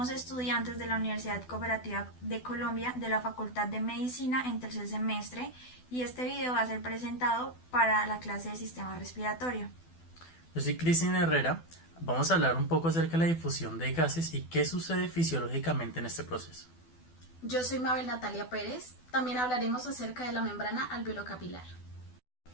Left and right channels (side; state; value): right; late; 12 ms